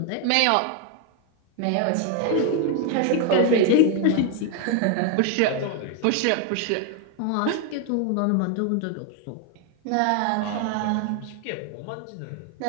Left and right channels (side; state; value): both; different; correlation 0.01